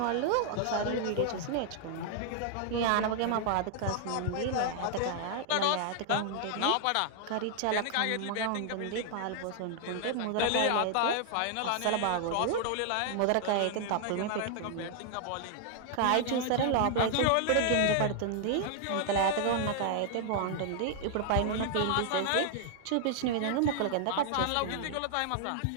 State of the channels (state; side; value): different; both; correlation 0.00